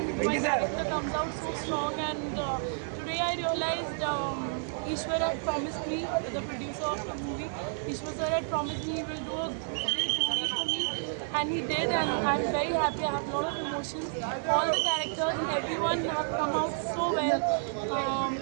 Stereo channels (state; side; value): silent; left; digital silence